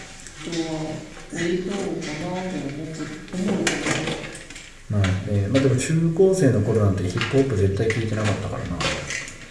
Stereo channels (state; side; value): identical; both; correlation 1.00